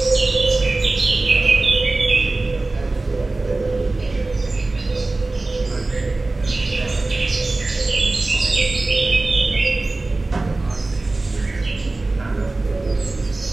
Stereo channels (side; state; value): left; quieter; 3.2 dB